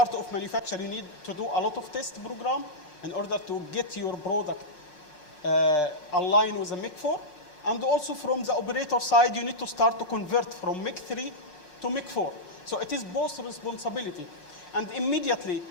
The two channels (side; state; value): right; late; 5.5 ms